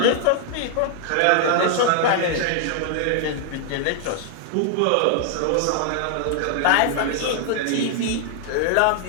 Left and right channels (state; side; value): different; both; correlation 0.00